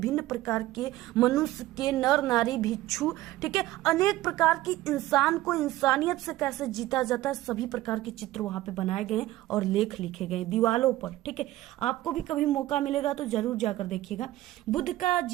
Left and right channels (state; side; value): quieter; left; 16.1 dB